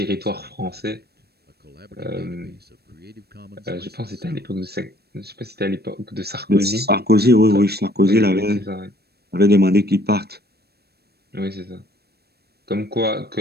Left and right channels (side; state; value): left; late; 0.47 ms